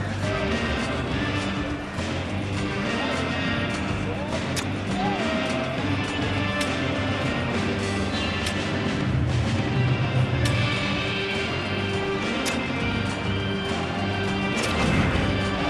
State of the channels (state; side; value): identical; both; correlation 1.00